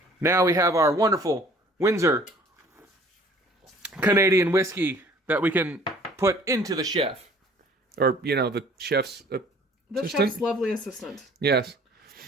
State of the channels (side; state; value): both; normal; correlation 0.53